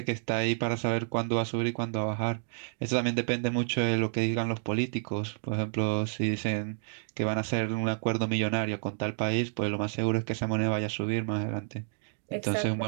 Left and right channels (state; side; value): silent; left; digital silence